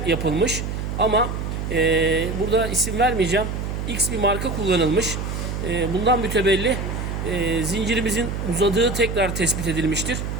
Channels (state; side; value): noise; right; hum, 4 dB below the sound